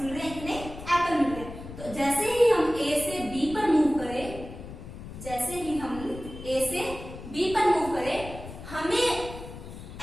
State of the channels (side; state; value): left; noise; rumble, 12 dB below the sound